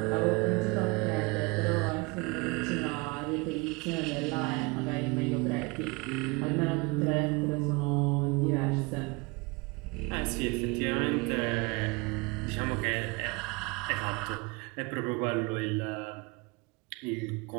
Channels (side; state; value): left; quieter; 26.9 dB